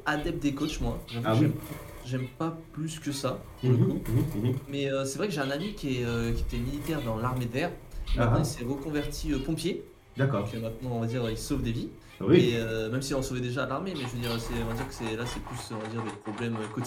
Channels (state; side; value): identical; both; correlation 1.00